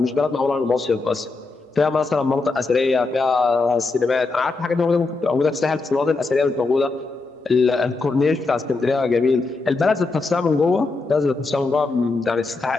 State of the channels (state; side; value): quieter; right; 3.7 dB